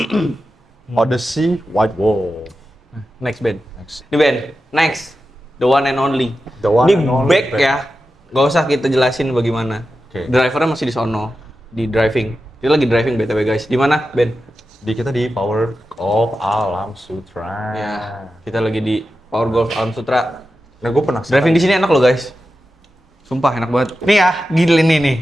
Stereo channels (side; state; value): both; normal; correlation 0.91